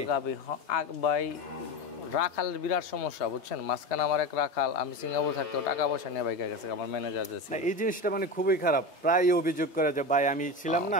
ভাই রাখালের বিরাট সমস্যা বুঝছেন। মাঝখানে আমার এক রাখাল, আমি সিঙ্গাপুর থাকতেও টাকা পয়সা নিয়ে বাইকে গেছে আমার ম্যানেজার যে ছিল। এই জিনিসটা মানে খুবই খারাপ, প্রায় অভিযোগ করে যে ভাই আমি ছিলাম না,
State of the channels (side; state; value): right; late; 3.3 ms